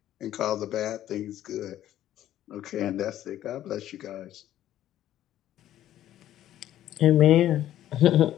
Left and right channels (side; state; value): right; quieter; 12.5 dB